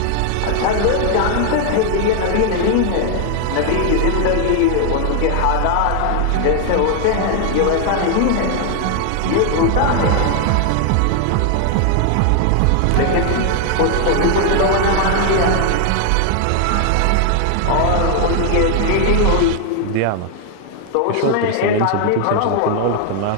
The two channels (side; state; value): both; different; correlation 0.00